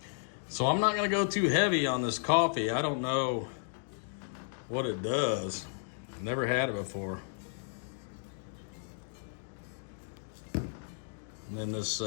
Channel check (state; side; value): silent; right; digital silence